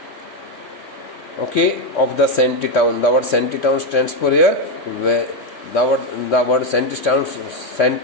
okay, of the shanty town. The word shanty town stands for here the word shanty town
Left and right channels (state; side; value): late; right; 3.2 ms